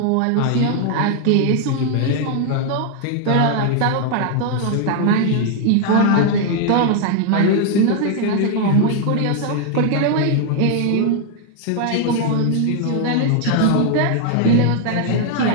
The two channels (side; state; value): both; different; correlation 0.00